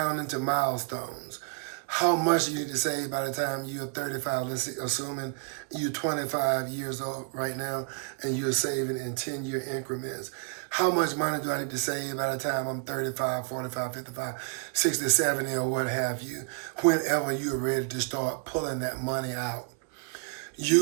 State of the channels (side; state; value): left; quieter; 38.2 dB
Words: into milestones. how much you need to save by the time you're 35. Let's see, assuming you're 25 years old right now and you're saving in 10-year increments. How much money do I need to save by the time I'm 35, 45, 55, 60, 70, or what have you, whenever you're ready to start pulling that money out?